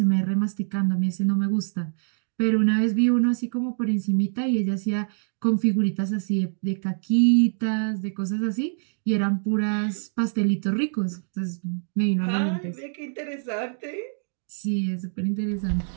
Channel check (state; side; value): silent; left; digital silence